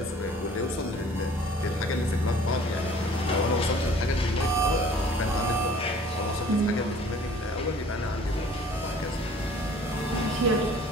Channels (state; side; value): normal; both; correlation 0.51